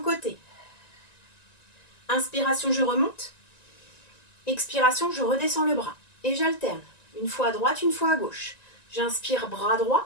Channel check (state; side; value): late; right; 1.9 ms